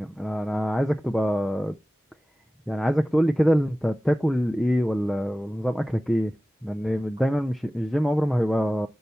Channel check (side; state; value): both; normal; correlation 0.97